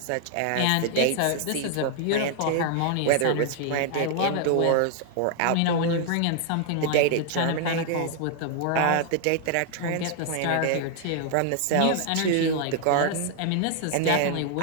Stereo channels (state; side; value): different; both; correlation 0.00